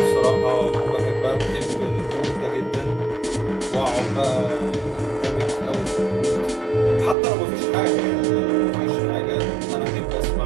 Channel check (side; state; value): left; drops out; at 7.2 s